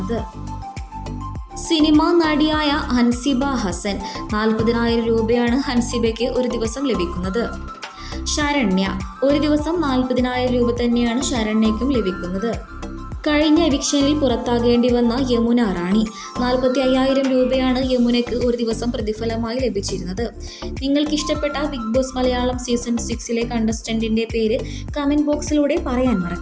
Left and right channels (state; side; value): identical; both; correlation 1.00